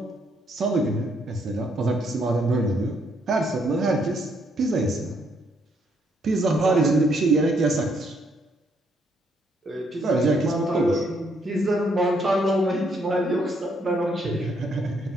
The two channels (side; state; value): both; normal; correlation 0.72